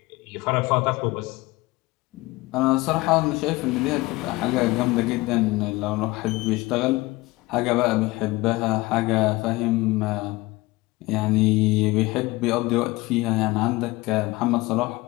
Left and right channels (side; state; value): right; quieter; 21.1 dB